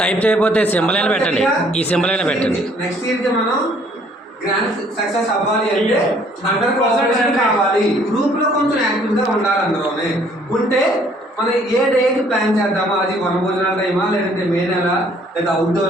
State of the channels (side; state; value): both; normal; correlation 0.61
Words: టైప్ చేయకపోతే సింబల్ అయినా పెట్టండి, ఈ సింబల్ అయినా పెట్టండి. నెక్స్ట్ ఇయర్ కి మనం గ్రాండ్ సక్సెస్ అవ్వాలి అంటే 100% కావాలి. గ్రూప్ లో కొంచెం యాక్టివ్ గా ఉండాలి. అందులోనే ఉంటే మనం ఏ డేకి ప్లాన్ చేద్దామా, అది వనభోజనాల టైమా లేదంటే మే నెల లేదా